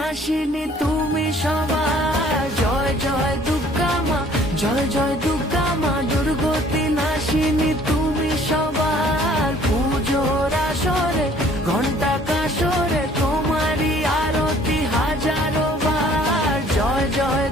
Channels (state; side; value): normal; both; correlation 0.56